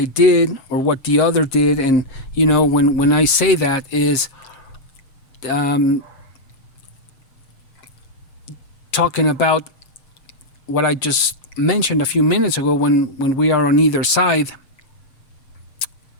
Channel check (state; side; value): late; right; 7.5 ms